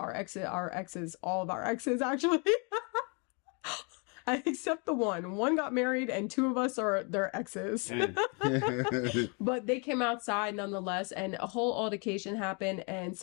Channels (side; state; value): right; quieter; 34.6 dB